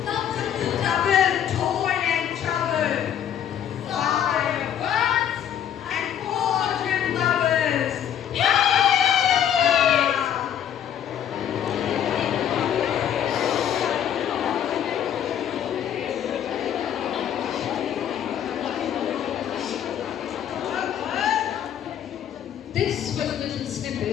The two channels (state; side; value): quieter; right; 9.8 dB